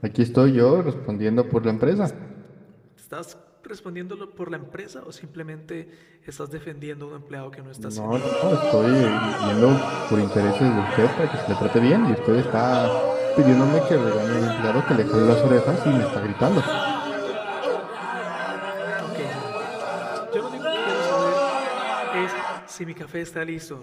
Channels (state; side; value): identical; both; correlation 1.00